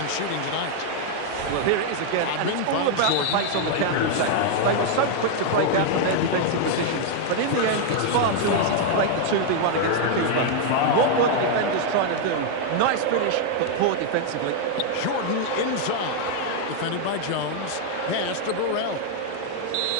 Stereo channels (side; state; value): both; different; correlation 0.00